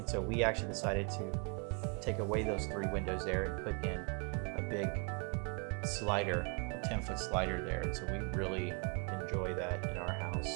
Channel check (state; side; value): quieter; left; 35.0 dB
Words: so we actually decided to take away those 3 windows there and put in a big slider, a 10-foot slider there. And so we really enjoy that in our